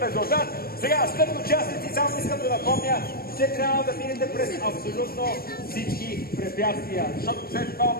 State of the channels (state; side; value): late; right; 0.44 ms